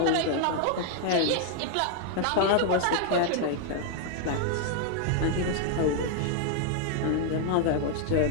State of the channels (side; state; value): both; different; correlation 0.00